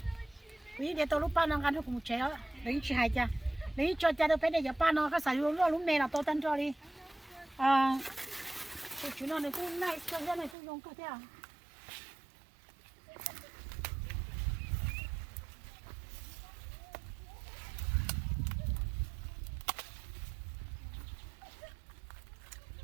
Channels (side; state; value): left; drops out; at 10.6 s